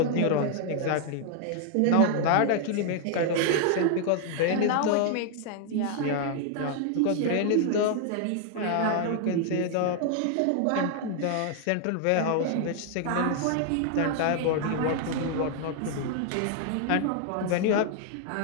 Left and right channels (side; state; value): both; different; correlation 0.00